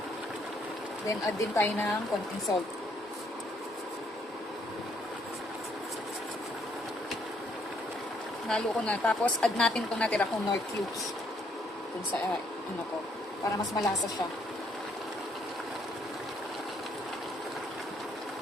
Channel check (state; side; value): normal; both; correlation 0.69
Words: Then add din tayo ng konting salt. Nalo ko na. Tapos, add natin itong natira kong Knorr cubes. Kung sa, ano ko. Para mas malasa siya.